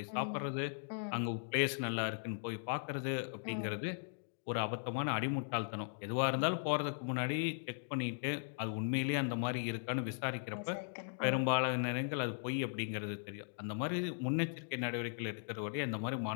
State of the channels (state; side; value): silent; right; digital silence